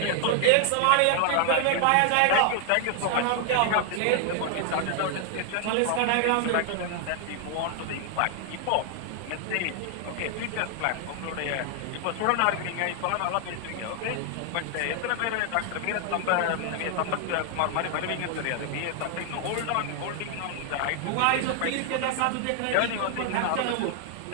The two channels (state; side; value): different; both; correlation 0.00